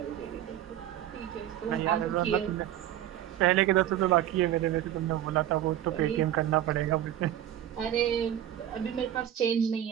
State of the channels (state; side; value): quieter; left; 11.9 dB